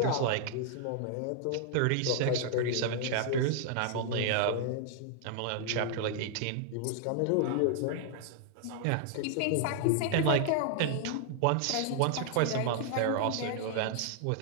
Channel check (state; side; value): different; both; correlation -0.01